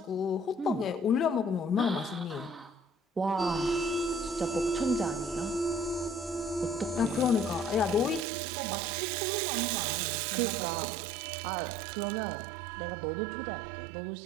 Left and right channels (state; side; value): drops out; left; at 8.2 s